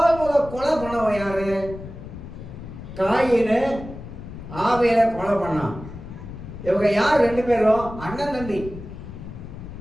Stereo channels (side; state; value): left; noise; rumble, 12 dB below the sound